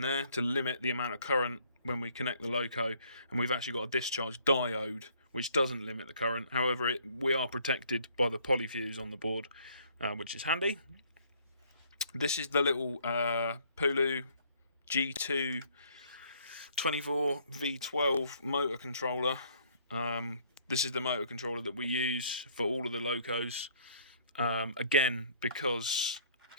to limit the amount of current when we connect the Loco, and we've actually got a discharge diode which doesn't limit the current. However, we are protected by the polyfuse on the board, which is handy. This is the little Pulu G2 24V12 motor controller. This is the motor controller that we use for all of the Locos. Again, because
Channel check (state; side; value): inverted; both; correlation -0.61